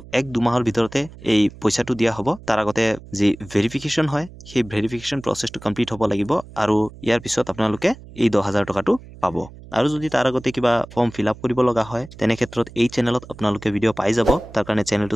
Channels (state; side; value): noise; right; hum, 18 dB below the sound